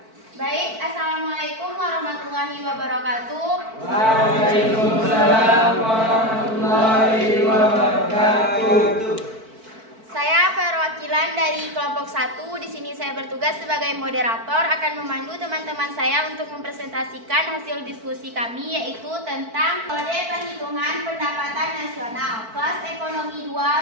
Baik, Assalamualaikum warahmatullahi wabarakatuh. Waalaikumsalam warahmatullahi wabarakatuh. Saya perwakilan dari kelompok 1. Di sini saya bertugas sebagai moderator akan memandu teman-teman saya untuk mempresentasikan hasil diskusi kami yaitu tentang metode perhitungan pendapatan nasional kelas ekonomi 2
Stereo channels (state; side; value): late; left; 4.5 ms